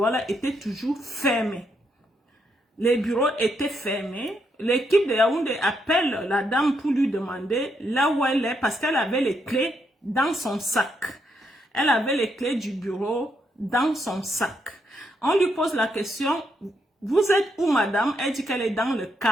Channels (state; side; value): normal; both; correlation 0.77